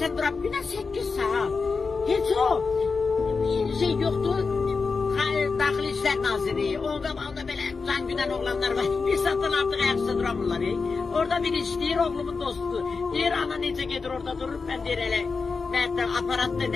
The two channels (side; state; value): right; quieter; 4.7 dB